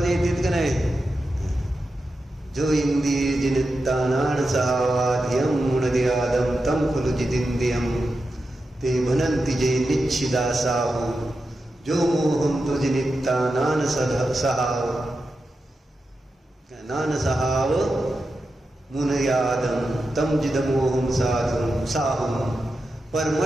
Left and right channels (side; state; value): both; normal; correlation 0.90